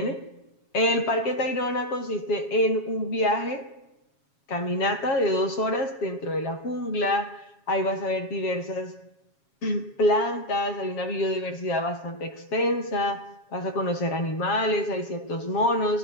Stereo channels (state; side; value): late; right; 7.3 ms